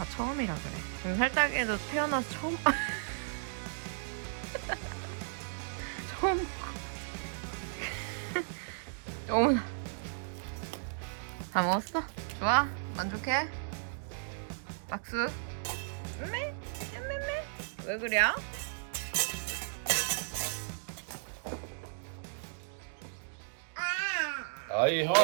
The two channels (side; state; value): left; silent; digital silence